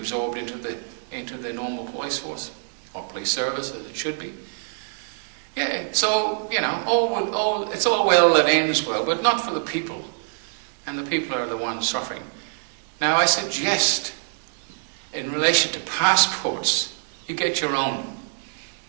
into the normal police force, or police service as it should be. Yeah, so, you know, it's all well that ends well, but not for the people. And the people are the ones suffering. Now, I suggest, in relation to passports, you get your own.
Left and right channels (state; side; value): silent; left; 62 dB below the other